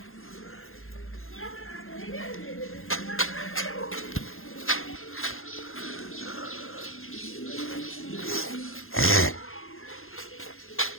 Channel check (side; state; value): right; late; 0.61 ms